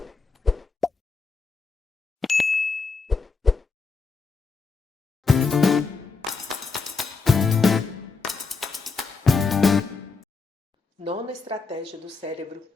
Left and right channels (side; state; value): right; quieter; 4.4 dB